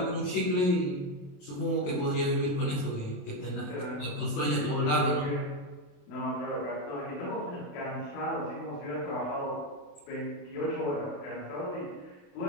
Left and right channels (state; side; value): late; right; 27 ms